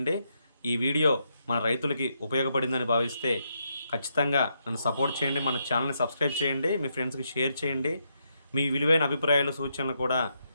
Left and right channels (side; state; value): both; inverted; correlation -0.79